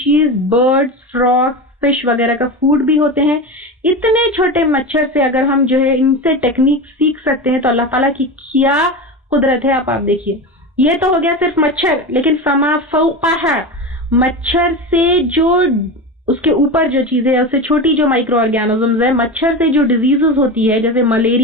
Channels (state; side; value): normal; both; correlation 0.23